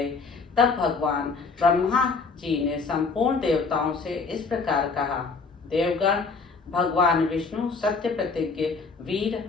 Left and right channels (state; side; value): quieter; right; 4.6 dB